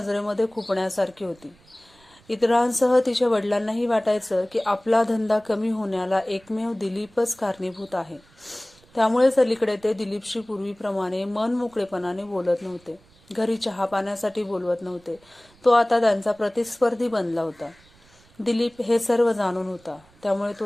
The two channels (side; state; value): right; noise; rumble, 29 dB below the sound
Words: खुपण्यासारखी होती. इतरांसह तिच्या वडिलांनाही वाटायचं की आपला धंदा कमी होण्याला एकमेव दिलीपच कारणीभूत आहे. त्यामुळेच अलीकडे ते दिलीपशी पूर्वीप्रमाणे मनमोकळेपणाने बोलत नव्हते. घरी चहा पाण्यासाठी बोलवत नव्हते. तो आता त्यांचा प्रतिस्पर्धी बनला होता. दिलीप हे सर्व जाणून होता. त्यामुळे